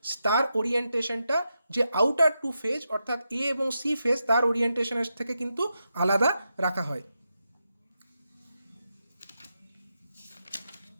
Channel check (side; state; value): both; inverted; correlation -0.87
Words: তার ওরিয়েন্টেশনটা যে আউটার 2 ফেজ অর্থাৎ A এবং C ফেজ তার ওরিয়েন্টেশনের থেকে কিন্তু আলাদা রাখা হয়।